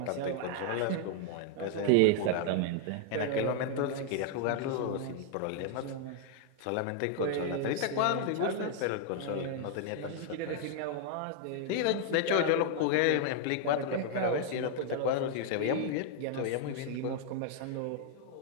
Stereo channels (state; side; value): different; both; correlation 0.00